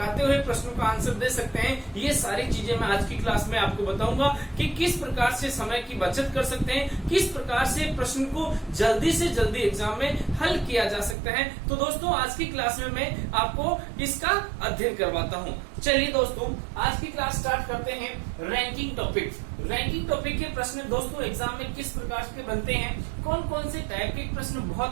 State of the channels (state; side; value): drops out; left; at 11.2 s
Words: हुए प्रश्नों का आंसर दे सकते हैं, ये सारी चीजें मैं आज की क्लास में आपको बताऊंगा कि किस प्रकार से समय की बचत कर सकते हैं, किस प्रकार से प्रश्न को जल्दी से जल्दी एग्जाम में हल किया जा सकता है। तो दोस्तों आज की क्लास में मैं आपको इसका अध्ययन करवाता हूं। चलिए दोस्तों, आज की क्लास स्टार्ट करते हैं रैंकिंग टॉपिक। रैंकिंग टॉपिक के प्रश्न दोस्तों एग्जाम में किस प्रकार के बनते हैं, कौन कौन से टाइप के प्रश्न